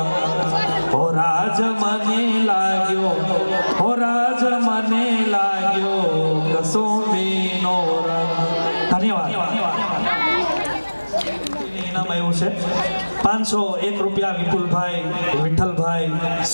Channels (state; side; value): inverted; both; correlation -1.00